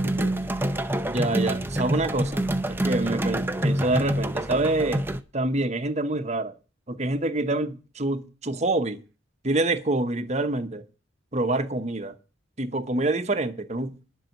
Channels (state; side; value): normal; both; correlation 0.54